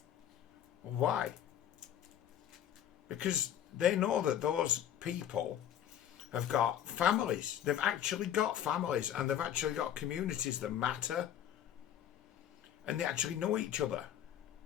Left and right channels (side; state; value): right; quieter; 10.3 dB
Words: why? Because they know that those people have got families. They've actually got families, and they've actually got communities that matter. And they actually know each other.